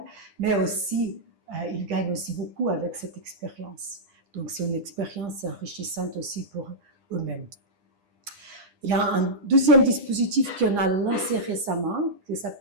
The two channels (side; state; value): left; late; 10 ms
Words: mais aussi ils gagnent aussi beaucoup avec cette expérience. Donc c'est une expérience enrichissante aussi pour eux-mêmes. Il y a un deuxième dispositif qu'on a lancé récemment, qui